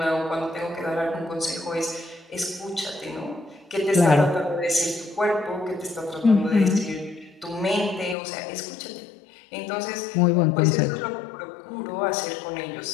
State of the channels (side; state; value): right; drops out; at 8.2 s